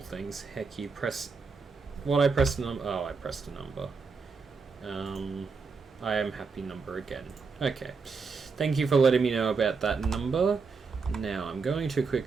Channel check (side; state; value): left; quieter; 4.8 dB